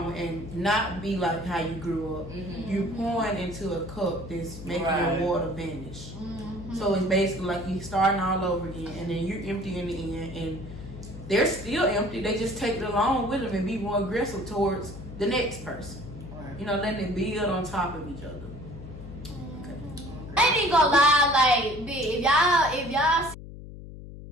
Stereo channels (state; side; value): noise; left; hum, 13 dB below the sound